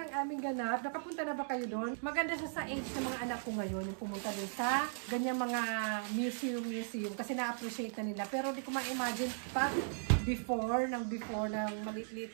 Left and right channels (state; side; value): silent; left; digital silence